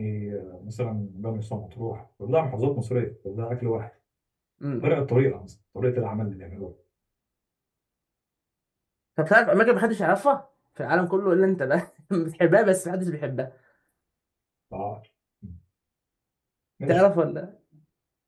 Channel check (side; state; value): both; identical; correlation 1.00